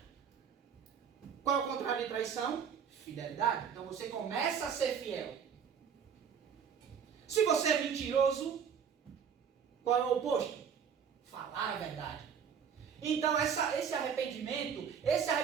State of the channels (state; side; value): quieter; left; 7.4 dB